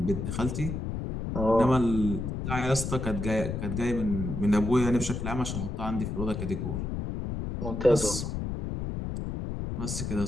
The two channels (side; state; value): left; noise; rumble, 4 dB below the sound